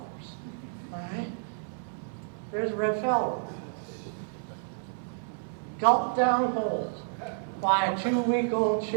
all right? There's a red phalarope. Gulped down whole by a 2-week-old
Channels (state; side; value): silent; left; digital silence